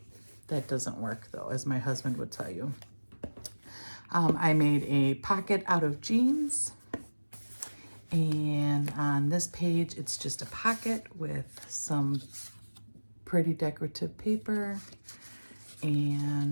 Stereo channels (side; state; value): both; inverted; correlation -1.00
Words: That doesn't work though, as my husband would tell you. I made a pocket out of jeans. And on this page, it's just a pocket with some pretty decorative paper